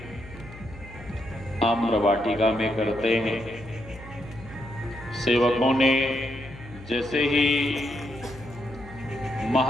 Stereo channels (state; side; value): noise; left; hum, 17 dB below the sound